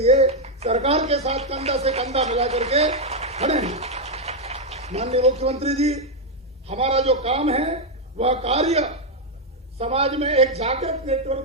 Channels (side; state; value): both; normal; correlation 0.01